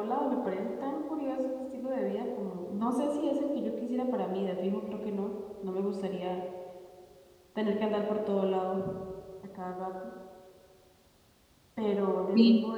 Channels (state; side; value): identical; both; correlation 1.00